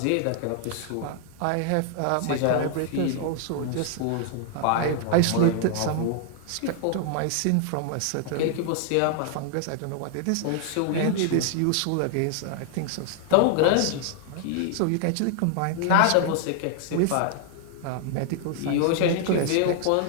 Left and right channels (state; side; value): different; both; correlation 0.00